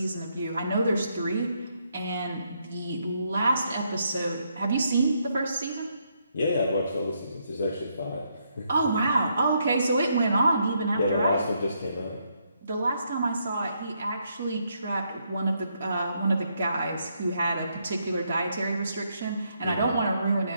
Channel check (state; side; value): inverted; both; correlation -0.76